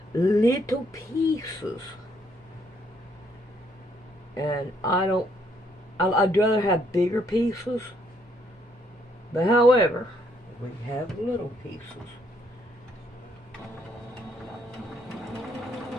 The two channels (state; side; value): normal; both; correlation 0.70